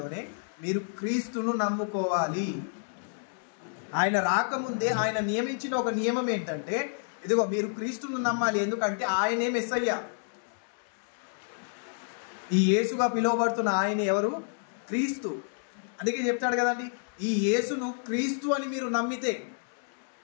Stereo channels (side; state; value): right; silent; 58 dB below the other